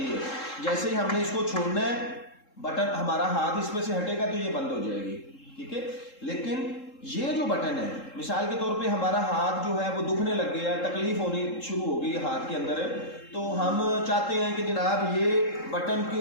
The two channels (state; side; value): late; right; 3.7 ms